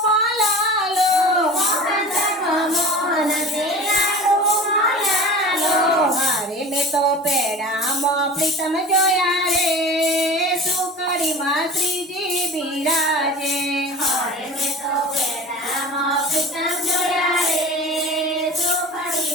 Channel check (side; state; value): both; normal; correlation 0.37